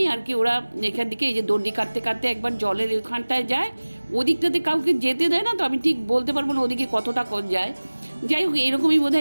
আর কি ওরা এখান থেকে এই যে দণ্ডি কাটতে কাটতে একবার জলের ওখানটায় যায়। ওদিকটাতে কাউকে যেতে দেয় না, তো আমি ঠিক বলতে পারবো না ওদিকে কতটা যায়। যাই হোক, এরকমই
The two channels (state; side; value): inverted; both; correlation -1.00